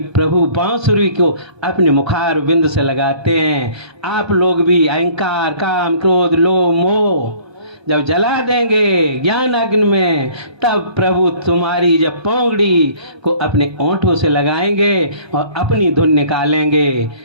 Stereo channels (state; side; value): late; left; 1.2 ms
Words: बांसुरी को अपने मुखार बिंद से लगाते हैं। आप लोग भी अहंकार, काम, क्रोध, लोभ, मोह जब जला देंगे ज्ञान अग्नि में, तब प्रभु तुम्हारी जब पोंगड़ी को अपने ओंठों से लगाएंगे और अपनी धुन निकालेंगे,